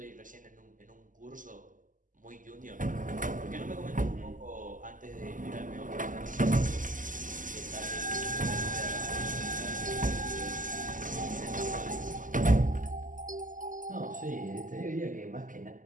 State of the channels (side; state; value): left; late; 0.38 ms